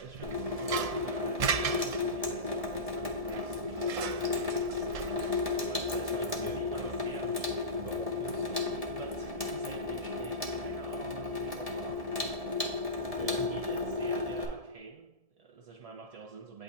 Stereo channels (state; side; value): late; left; 1.7 ms